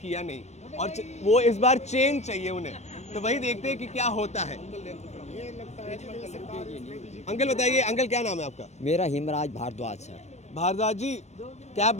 नहीं और वो इस बार चेंज चाहिए उन्हें। तो वही देखते हैं कि क्या होता है। अंकल बताइए, अंकल क्या नाम है आपका? मेरा हिमराज भारद्वाज सर। भारद्वाज जी, क्या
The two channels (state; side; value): late; right; 0.33 ms